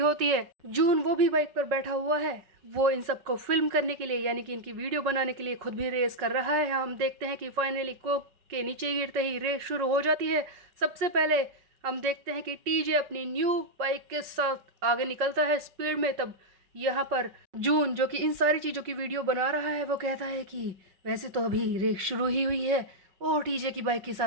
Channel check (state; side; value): late; left; 5.3 ms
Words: है। जून वो भी बाइक पर बैठा हुआ है। वो इन सबको फिल्म करने के लिए यानी कि इनकी वीडियो बनाने के लिए खुद भी रेस कर रहा है। हम देखते हैं कि फाइनली कोक के नीचे गिरते ही रेस शुरू हो जाती है। सबसे पहले हम देखते हैं कि टीजे अपनी न्यू बाइक के साथ आगे निकलता है स्पीड में। तब यहाँ पर जून जो कि इन सारी चीज़ों की वीडियो बना रहा है वो कहता है कि वैसे तो अभी रेस शुरू ही हुई है और टीजे की बाइक के